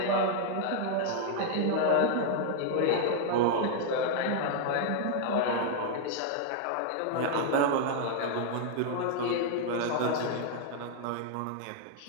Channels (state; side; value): different; both; correlation -0.01